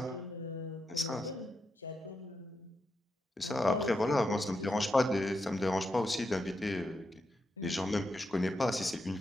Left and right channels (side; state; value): both; normal; correlation 0.85